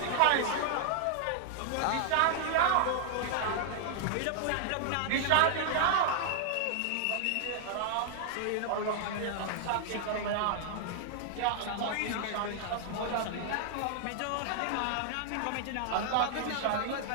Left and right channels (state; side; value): different; both; correlation -0.01